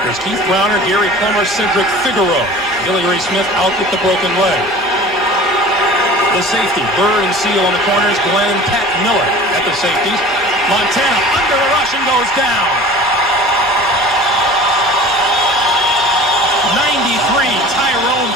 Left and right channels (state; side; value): normal; both; correlation 0.41